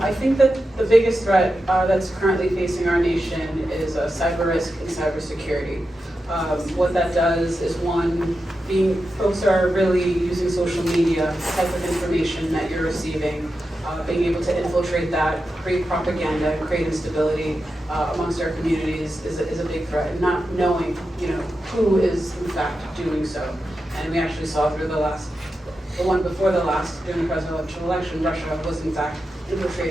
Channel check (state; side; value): normal; both; correlation 0.90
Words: I think that the biggest threat that's currently facing our nation is cyber risk and cybersecurity. What that does is, one, folks are really using social media, the type of information that you're receiving, being able to infiltrate that, create propaganda, create instability amongst our communities is a big threat, and not knowing, who is in fact doing so. And we actually saw through the one before the last, during the presidential election, Russia was in fact